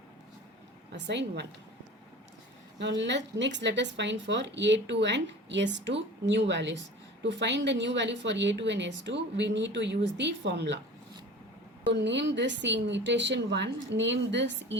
Assign 1. Now next let us find for A2 and S2 new values. To find the new value for A2 and S2, we need to use the formula. So name this in iteration 1, name this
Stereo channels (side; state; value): both; normal; correlation 0.40